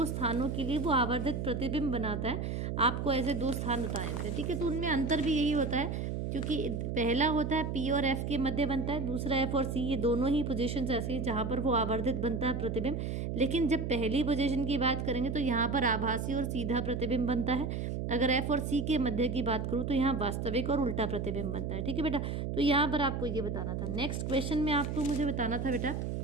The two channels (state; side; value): noise; right; hum, 2 dB below the sound